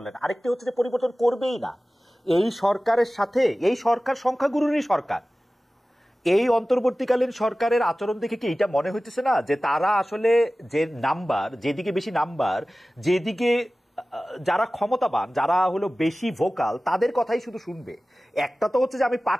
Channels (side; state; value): both; normal; correlation 0.97